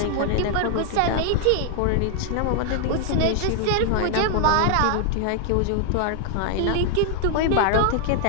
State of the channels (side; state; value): both; different; correlation 0.00